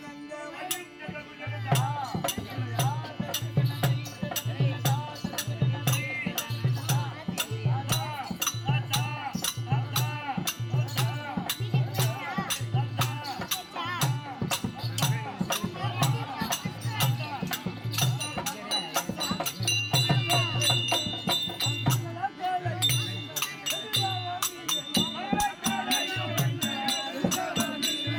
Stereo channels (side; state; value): both; identical; correlation 1.00